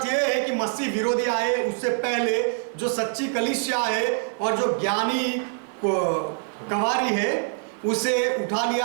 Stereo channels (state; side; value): silent; left; 62 dB below the other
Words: यह है कि मसीह विरोधी आए उससे पहले जो सच्ची कलीसिया है और जो ज्ञानी गवारी है, उसे उठा